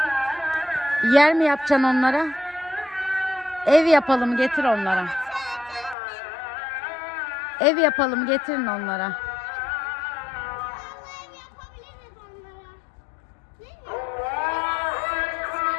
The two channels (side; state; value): right; drops out; at 6.0 s